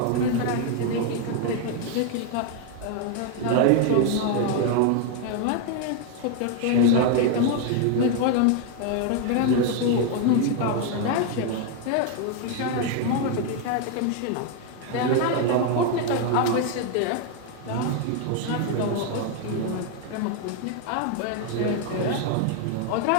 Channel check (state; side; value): different; both; correlation 0.01